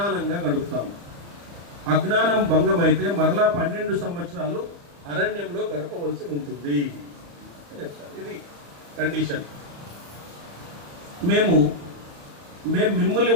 గడుపుతాము. అజ్ఞానం భంగమైతే మరలా 12 సంవత్సరాలు అరణ్యంలో గడపవలసి ఉంటుంది. ఇది కండిషన్. మేము మిమ్మల్ని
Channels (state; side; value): late; left; 35 ms